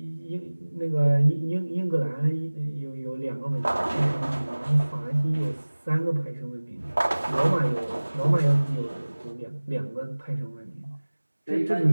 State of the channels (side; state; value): both; inverted; correlation -1.00